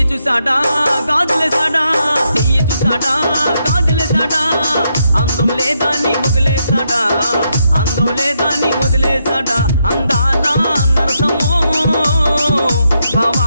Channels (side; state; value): both; inverted; correlation -0.80